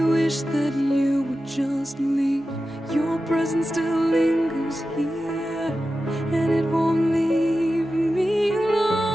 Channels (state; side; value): normal; both; correlation 0.93